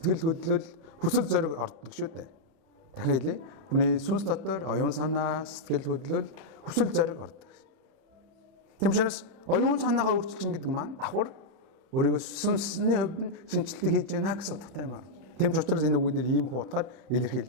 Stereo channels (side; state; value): left; late; 31 ms